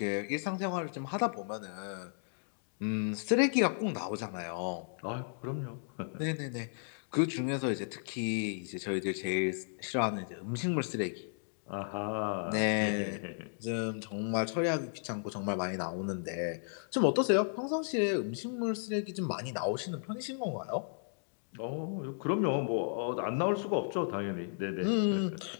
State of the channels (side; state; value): right; silent; digital silence